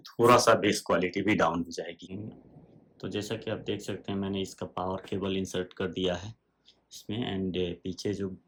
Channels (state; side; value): identical; both; correlation 1.00